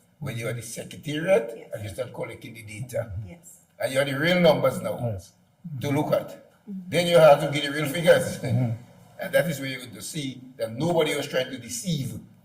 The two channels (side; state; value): both; identical; correlation 1.00